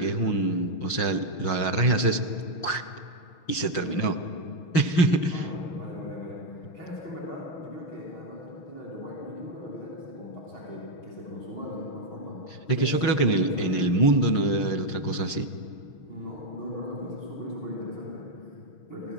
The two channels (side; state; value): right; late; 6.3 ms